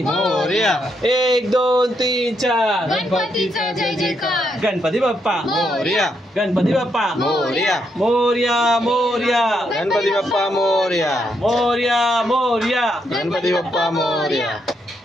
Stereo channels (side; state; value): both; normal; correlation 0.78